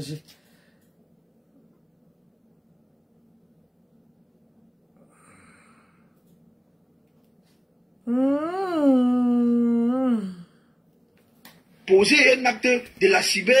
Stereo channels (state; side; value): identical; both; correlation 1.00